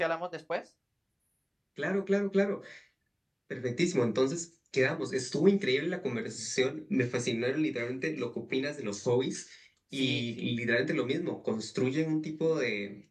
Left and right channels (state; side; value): identical; both; correlation 1.00